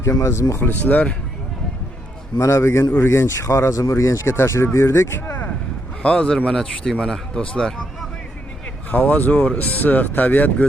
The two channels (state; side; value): normal; both; correlation 0.77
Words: aziz muxlislar. Mana bugun Urganch, Xorazm Urganchga tashrif buyurdik. Hozir mana tushdik mana do'stlar. Havo zo'r, issiq, tabiat